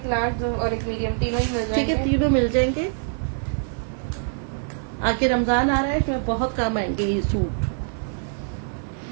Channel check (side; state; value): left; silent; digital silence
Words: लार्ज और एक मीडियम, तीनों ही मिल ठीक है, जाएंगे। तीनों मिल जाएंगे। आगे रमजान आ रहा है, तो बहुत काम आएंगे ये सूट।